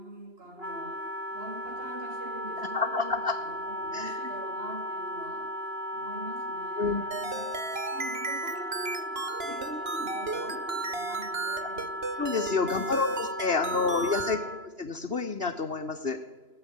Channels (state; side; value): late; left; 2.9 ms